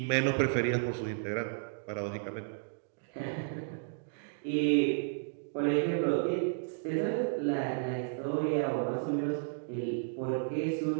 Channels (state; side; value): silent; left; digital silence